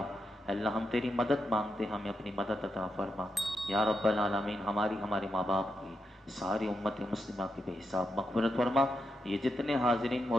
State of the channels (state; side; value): normal; both; correlation 0.85